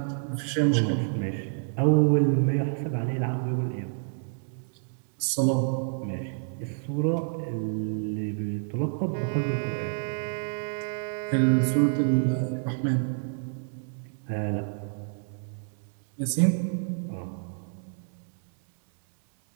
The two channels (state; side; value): silent; left; digital silence